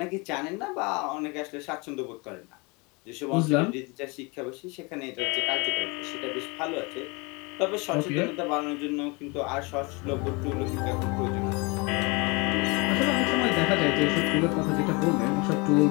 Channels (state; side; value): quieter; right; 28.2 dB